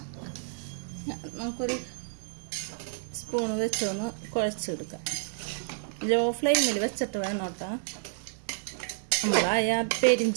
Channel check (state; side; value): silent; left; digital silence